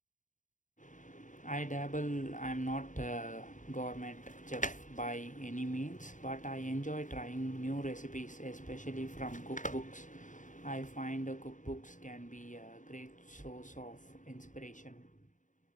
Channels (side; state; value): right; late; 0.37 ms